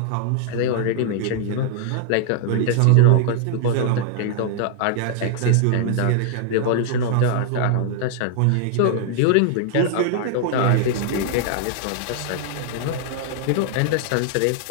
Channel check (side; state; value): both; different; correlation -0.01